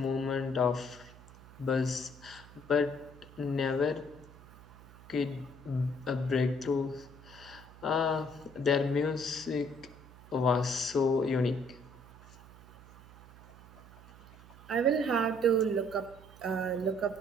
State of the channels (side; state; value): right; noise; hum, 20 dB below the sound